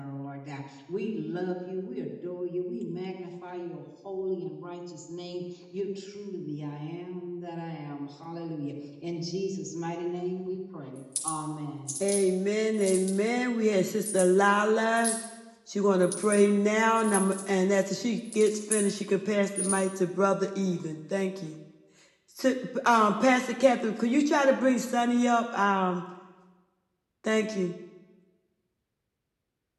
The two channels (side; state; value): both; identical; correlation 1.00